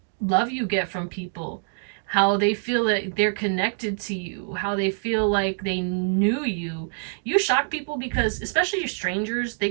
love you get from people, how they feel that they're connected to you, how they feel like they knew you. You shock people because, especially your strangers, they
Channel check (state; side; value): silent; left; digital silence